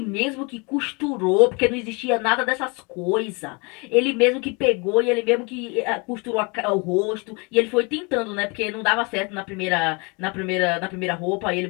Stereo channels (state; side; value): quieter; right; 29.8 dB